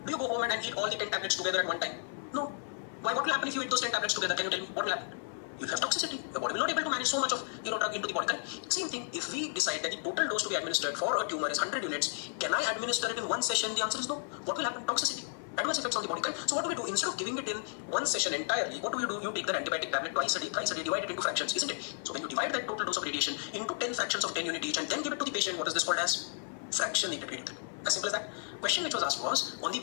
Do you go home and eat all the 10 tablets together at one time? No. Why? What will happen if you eat those 10 tablets together? Can you tell me? What will happen? You'll have toxicity. Your body will not be able to manage so much of drug into the body. Same thing, if we decide that the total dose to be administered for a tumor is 100 units, can I administer it in one session? The answer is no. What will happen? Toxicity. Adverse effects on the body. So what do we do? Instead of giving it in one session entirely, what do? You take that antibiotic tablet twice a day, divide it into fractions, isn't it? So when you divide that total dose of radiation into 10 fractions of 10 units each and then give it to the patient, what is this called as? Fractionated radiotherapy. As simple as that. Question which was asked was on the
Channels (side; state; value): right; silent; 56 dB below the other